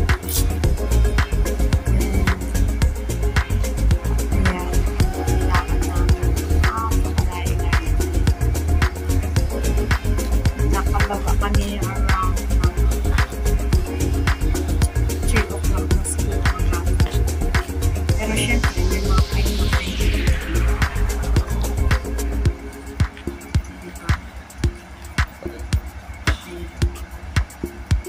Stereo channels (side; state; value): both; identical; correlation 1.00